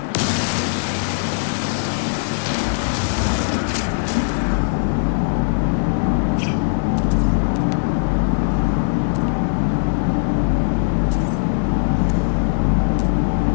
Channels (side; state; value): right; silent; 64 dB below the other